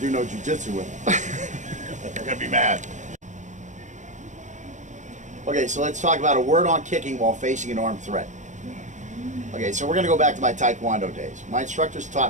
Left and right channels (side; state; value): left; late; 0.35 ms